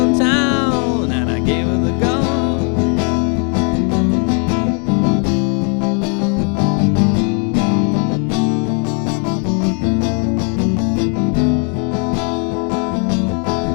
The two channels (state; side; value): quieter; right; 39.2 dB